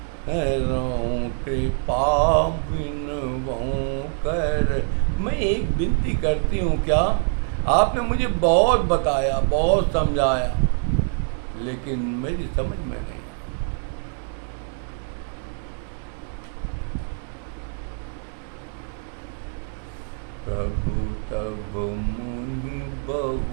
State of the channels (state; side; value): silent; left; 57 dB below the other